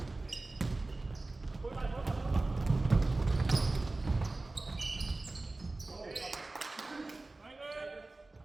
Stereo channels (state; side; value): quieter; left; 3.1 dB